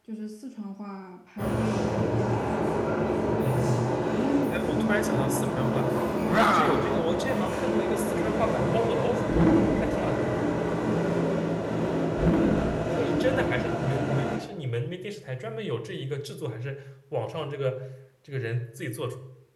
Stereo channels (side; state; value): both; identical; correlation 1.00